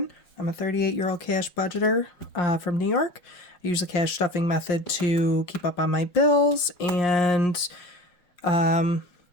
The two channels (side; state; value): right; late; 5.6 ms